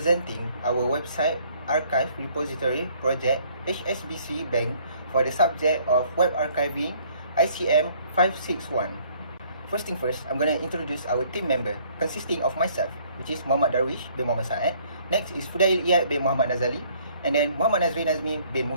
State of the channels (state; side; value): inverted; both; correlation -0.61